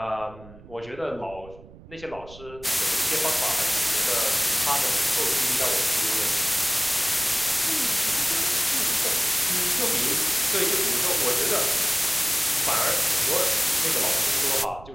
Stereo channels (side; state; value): right; noise; rumble, 20 dB below the sound